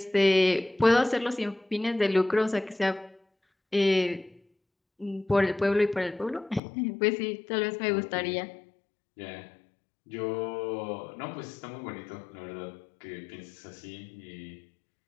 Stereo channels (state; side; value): drops out; right; at 6.6 s